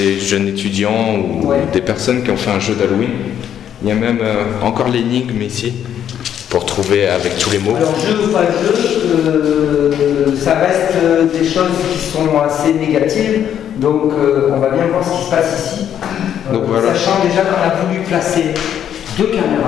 jeunes étudiants ou des personnes qui ont fait un jeu d'Halloween. Il y a même encore l'énigme ici pour trouver avec tous les mots. Alors jeu ou pas jeu, ça reste des choses qui sont assez négatives. Donc on va bien voir ce qui se passe ici. Donc, voilà. Sachant déjà qu'on a voulu placer 2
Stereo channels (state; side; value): quieter; right; 9.7 dB